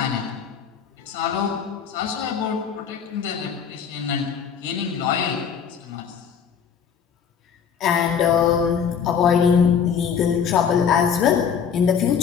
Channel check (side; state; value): right; quieter; 7.2 dB